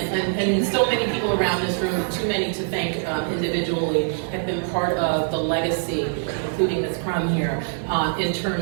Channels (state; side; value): silent; left; 63 dB below the other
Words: so many people around this room, too many to thank individually, have been part of the legacy, including Ms. Crum here, in